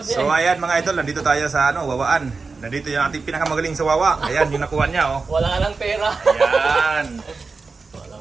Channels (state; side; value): quieter; left; 4.3 dB